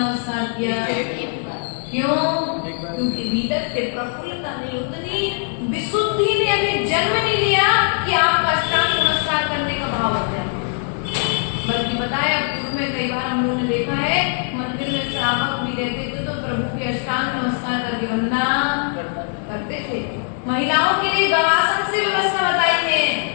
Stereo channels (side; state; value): right; silent; 57 dB below the other